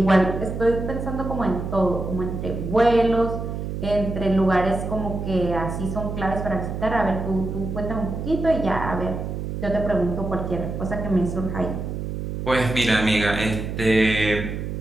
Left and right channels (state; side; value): noise; right; hum, 5 dB below the sound